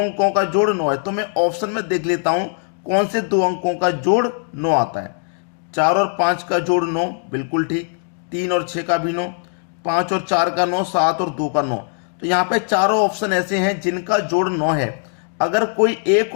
का जोड़ 9 है। तो मैं ऑप्शन में देख लेता हूं कौन से दो अंकों का जोड़ 9 आता है। 4 और 5 का जोड़ 9, बिल्कुल ठीक। 3 और 6 का भी 9, 5 और 4 का 9, 7 और 2 का 9। तो यहाँ पे चारों ऑप्शन ऐसे हैं जिनका जोड़ 9 है। अगर कोई एक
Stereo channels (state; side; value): silent; right; 58 dB below the other